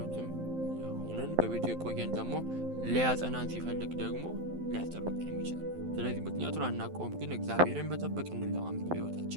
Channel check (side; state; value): left; late; 12 ms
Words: ሆነን በቤቱ የቆየን ደግሞ ሊያጸናን ሲፈልግ ደግሞ ሊያስጠብቀን የሚችላል። ስለዚህ ምክንያቱን አናውቀውም፣ ግን እግዚአብሔርን መጠበቅ እንለማመድ